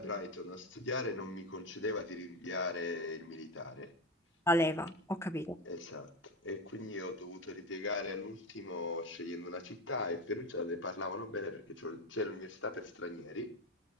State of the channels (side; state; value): both; normal; correlation 0.19